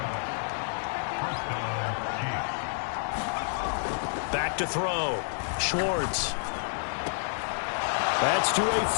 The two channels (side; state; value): right; silent; digital silence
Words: Back to throw. Schwartz. That's to a